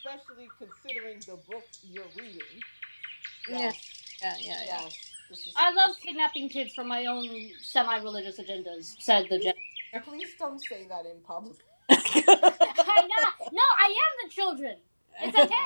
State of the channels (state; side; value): inverted; both; correlation -1.00